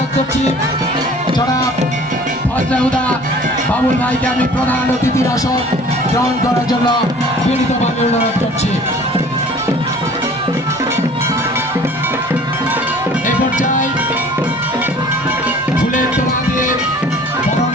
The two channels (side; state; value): both; normal; correlation 0.49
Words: করছি। জনাব ফজলেহুদা বাবুল ভাইকে আমি প্রধান অতিথির আসন গ্রহণ করার জন্য বিনীতভাবে অনুরোধ করছি। এই পর্যায়ে ফুলের তোলা দিয়ে বরণ